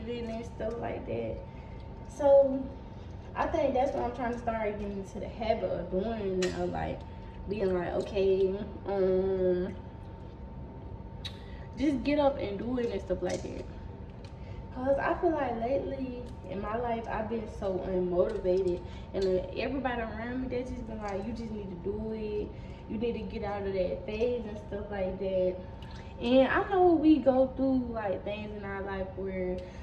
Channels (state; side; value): identical; both; correlation 1.00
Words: and stuff like that. So I think that's what I'm trying to start getting into the habit of doing now, like being like, okay, just get up and do it and stuff like that. Cause I feel like lately in my life I've been so unmotivated, and everybody around me they just been like, you just need to do it. You need to get out of that phase and stuff like that. And I know we go through like things in our life where